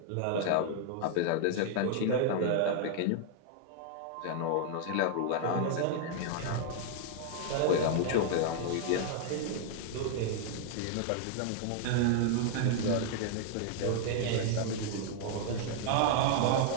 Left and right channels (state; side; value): different; both; correlation 0.00